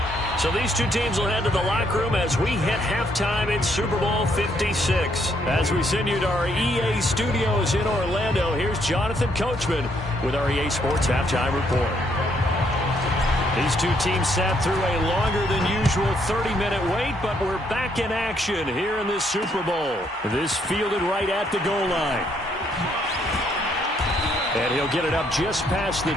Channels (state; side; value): normal; both; correlation 0.71